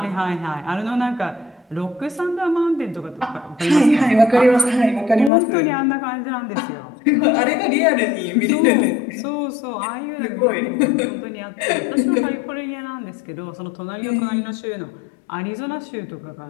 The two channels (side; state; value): right; drops out; at 5.3 s